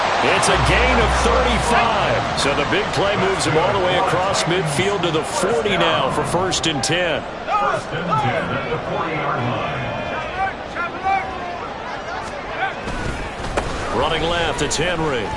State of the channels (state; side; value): identical; both; correlation 1.00